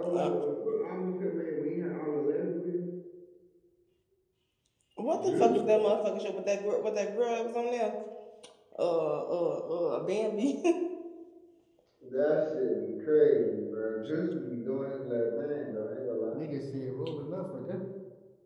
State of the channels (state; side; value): identical; both; correlation 1.00